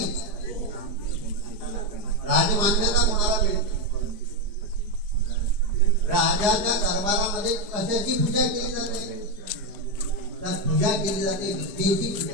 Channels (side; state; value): left; late; 4.9 ms